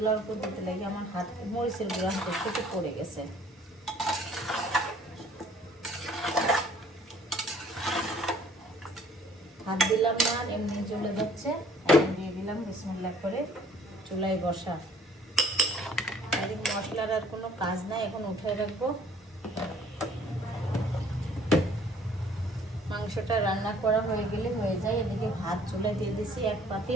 উপর দিতে লাগে। আমার হাত মরিচের গুঁড়া হাতের থেকে পড়ে গেছে। হাত দিলাম না, এমনি চলে যাচ্ছে। এখন দিয়ে দিলাম, বিসমিল্লাহ করে চুলায় বসা। আর এই মশলার আর কোনো কাজ নাই, এখন উঠায় রাখবো। মাংসটা রান্না করা হয়ে গেলে হয়ে যায়। এদিকে ভাত চুলায় দিয়ে দিছি 1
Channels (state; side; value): normal; both; correlation 0.56